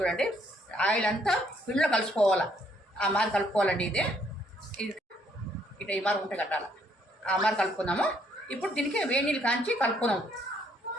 ఆయిల్ అంతా పిండిలో కలిసిపోవాలి, ఆ మరి కలుపుకోవాలండి. ఇది ఇట్లా ఈ మరి ఉంటే కట్టాలి, ఆ మరి కలుపుకుందాము. ఇప్పుడు దీనికి వేడి నీళ్ళు కాంచి కలుపుకుందాము.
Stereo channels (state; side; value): normal; both; correlation 0.68